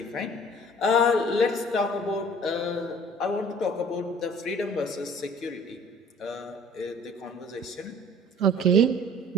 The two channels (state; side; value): normal; both; correlation 0.50